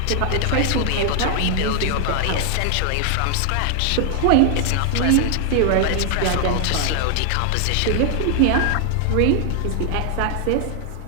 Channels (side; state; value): both; different; correlation 0.00